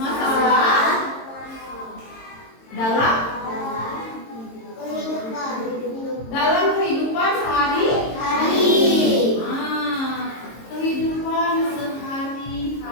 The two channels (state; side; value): late; right; 22 ms